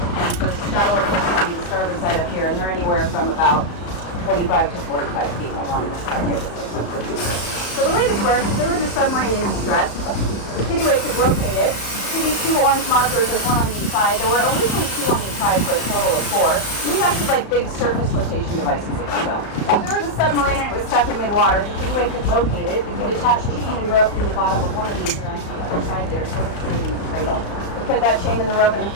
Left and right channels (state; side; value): late; right; 35 ms